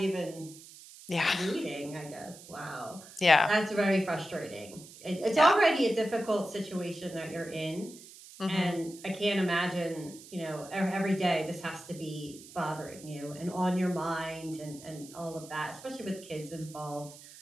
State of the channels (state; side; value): noise; right; hiss, 18 dB below the sound